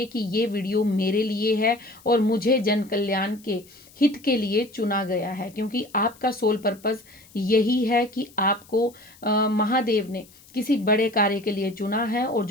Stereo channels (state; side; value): noise; left; hiss, 25 dB below the sound